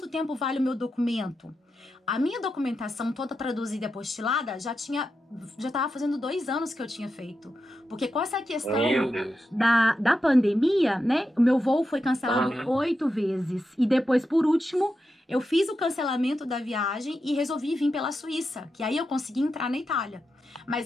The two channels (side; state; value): both; normal; correlation 0.88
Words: tempo vale o meu documento? A minha documentação toda traduzida e apostilada já tava fazendo 2 anos que eu tinha feito. Porque com essa questão da pandemia, né? O meu voo foi cancelado 8 vezes. E depois, por último, eu fiz o cancelamento da viagem e resolvi vir pela Suíça. Que aí eu consegui entrar na Itália.